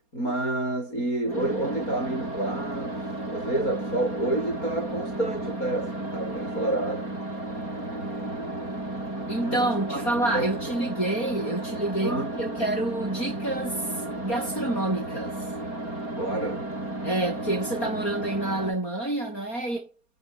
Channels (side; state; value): right; late; 4.3 ms